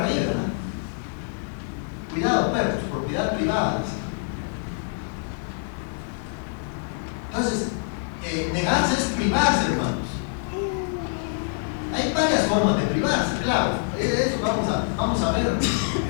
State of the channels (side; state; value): right; silent; 61 dB below the other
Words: ahí, ¿verdad? Cuidado, perros, propiedad privada. Entonces, negarse es privarse, hermanos. Hay varias formas de privarse, claro. Eso vamos a ver